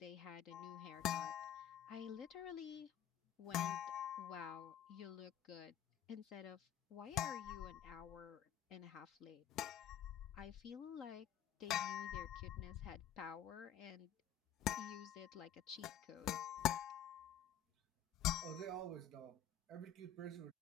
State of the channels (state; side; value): quieter; right; 8.9 dB